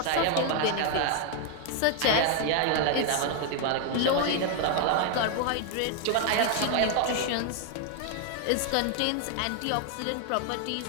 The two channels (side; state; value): both; different; correlation 0.00